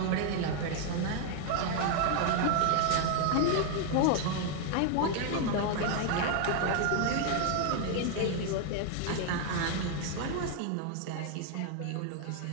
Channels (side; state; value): both; different; correlation 0.00